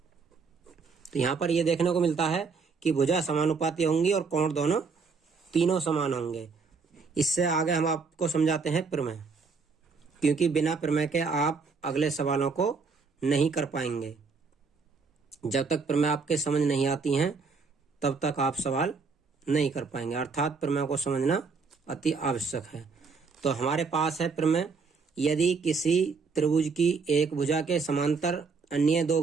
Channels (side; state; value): left; quieter; 4.9 dB